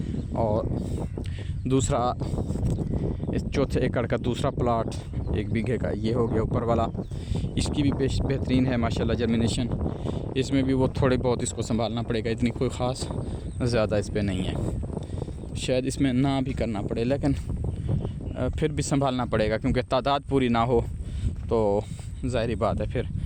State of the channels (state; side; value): identical; both; correlation 1.00